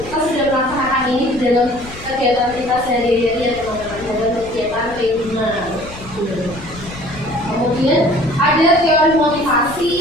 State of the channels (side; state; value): left; noise; rumble, 16 dB below the sound